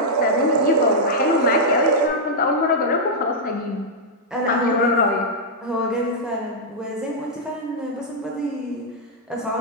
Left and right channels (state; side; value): normal; both; correlation -0.07